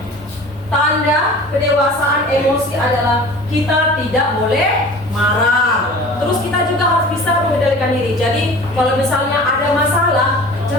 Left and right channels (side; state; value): both; normal; correlation 0.41